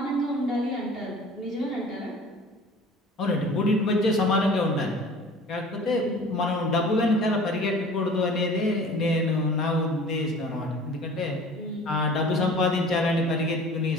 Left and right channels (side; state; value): both; normal; correlation 0.45